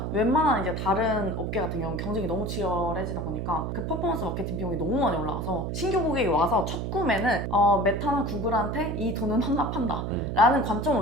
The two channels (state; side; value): noise; right; hum, 3 dB below the sound